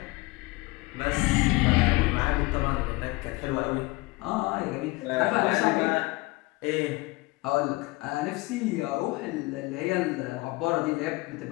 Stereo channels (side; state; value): right; quieter; 23.0 dB